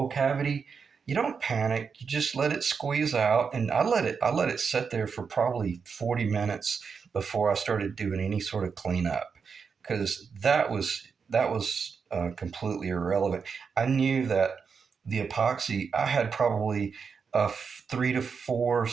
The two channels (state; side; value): quieter; left; 5.8 dB